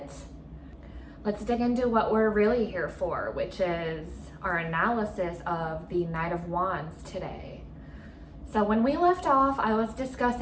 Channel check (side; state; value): both; identical; correlation 1.00